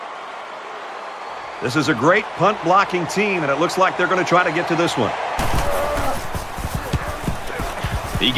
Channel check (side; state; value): both; identical; correlation 1.00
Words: This is a great punt blocking team, and it looks like they're going to try to get to this one. He